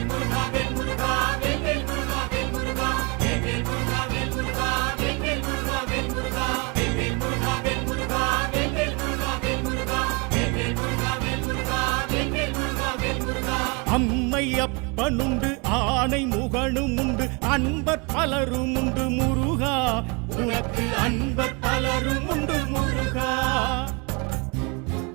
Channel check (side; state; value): left; quieter; 30.8 dB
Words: அம்மை அப்பனுண்டு ஆணை முகனும் உண்டு அன்பர் பலரும் உண்டு முருகா, உனக்கு அன்பர் பலரும் உண்டு முருகா.